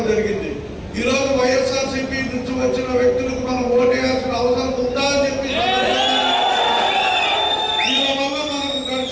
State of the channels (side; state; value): both; identical; correlation 1.00